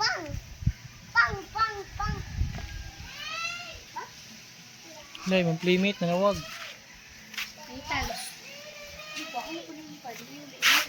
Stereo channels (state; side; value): identical; both; correlation 1.00